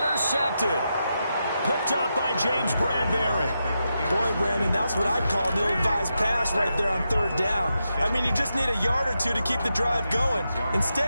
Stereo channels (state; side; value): inverted; both; correlation -0.87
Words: Picked up by James Bradbury. Boy, Brandon, that's what I'd call an ill-advised pass right there on 3rd down. I mean, you just need a yard or two to keep the drive going.